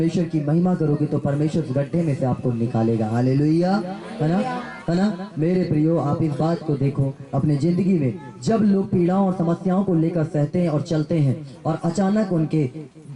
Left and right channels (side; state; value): both; identical; correlation 1.00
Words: की महिमा करोगे तो परमेश्वर उस गड्ढे में से आपको निकालेगा। हालेलुया, है ना, है ना। मेरे प्रियो, आप इस बात को देखो अपने जिंदगी में, जब लोग पीड़ाओं और समस्याओं को लेकर सहते हैं और चलते हैं और अचानक उनके